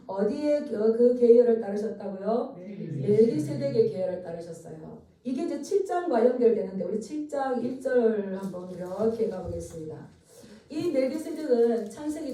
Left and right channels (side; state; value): both; identical; correlation 1.00